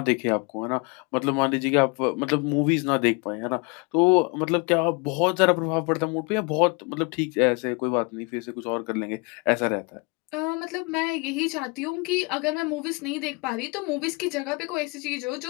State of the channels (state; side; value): quieter; right; 29.7 dB